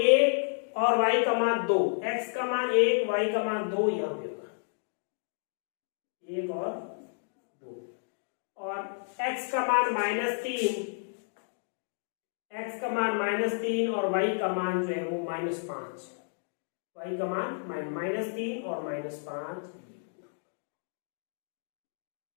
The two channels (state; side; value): silent; right; digital silence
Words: और y का मान 2, x का मान 1 y का मान 2 यहाँ पे होगा 1 और 2। और x का मान -3, x का मान -3 और y का मान जो है वो -5, y का मान -3 और -5।